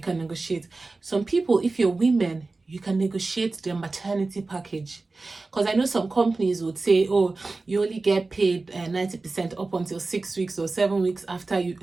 can negotiate. Some people, if you're women, you can negotiate their maternity package. Because I know some companies would say, oh, you only get paid 90% up until 6 weeks or 7 weeks after you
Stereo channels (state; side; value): quieter; left; 3.5 dB